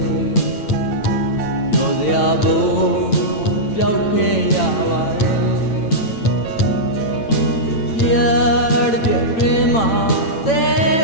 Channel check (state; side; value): late; right; 9.1 ms